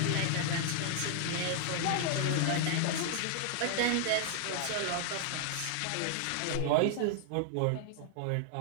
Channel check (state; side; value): different; both; correlation 0.00